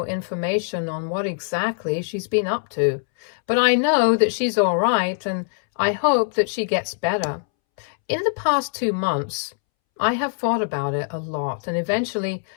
information on what exactly she's been up to. But I know that she's all right, and I hope that she gets better. In the past 2 months, I have thought about it a lot, and eventually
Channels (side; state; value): right; silent; 64 dB below the other